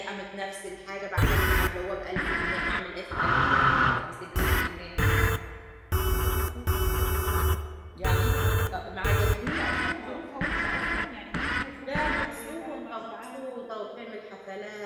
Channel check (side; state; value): both; identical; correlation 1.00